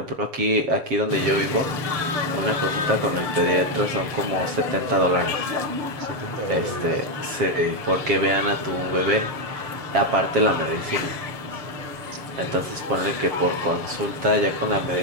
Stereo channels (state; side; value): late; left; 7.4 ms